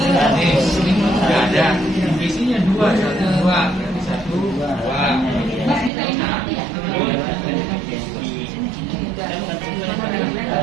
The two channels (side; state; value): left; drops out; at 5.9 s